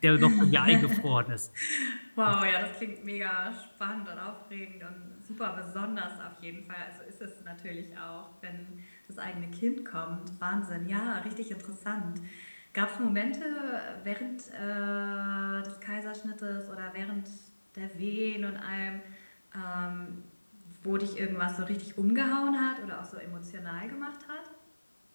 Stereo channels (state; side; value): inverted; both; correlation -1.00